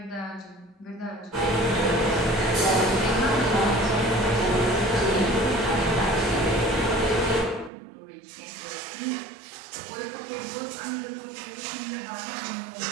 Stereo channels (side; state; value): left; drops out; at 7.7 s